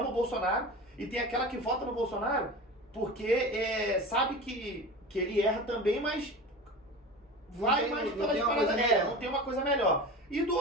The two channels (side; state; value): both; normal; correlation 0.32